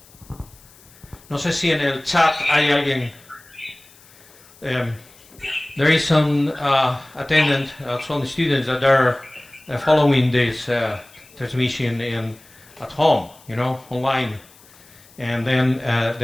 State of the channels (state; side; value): noise; left; hiss, 26 dB below the sound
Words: No sé si en el chat hay alguien. There is some attendant, some students that are following this transmission at home, online. And then